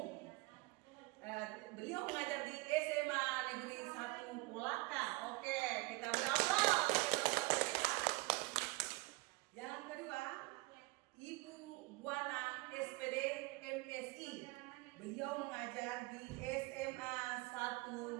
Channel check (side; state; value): left; quieter; 23.0 dB